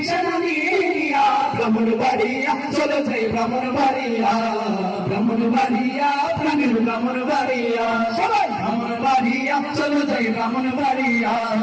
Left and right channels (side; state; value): both; identical; correlation 1.00